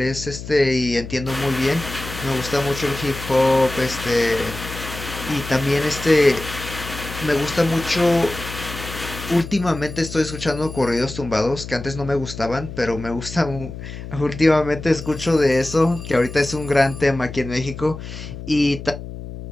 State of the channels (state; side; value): noise; left; hum, 10 dB below the sound